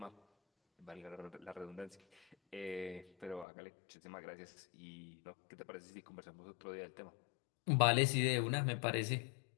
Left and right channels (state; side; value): drops out; right; at 3.5 s